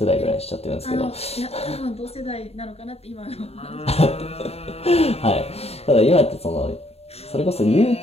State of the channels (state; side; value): late; right; 0.30 ms